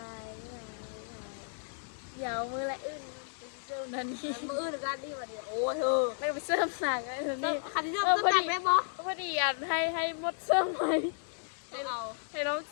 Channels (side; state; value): right; silent; digital silence